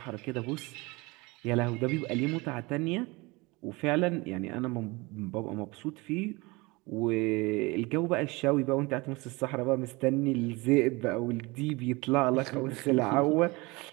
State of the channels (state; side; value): quieter; left; 24.4 dB